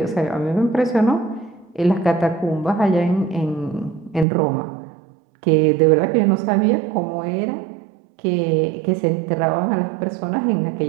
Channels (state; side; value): drops out; left; at 4.2 s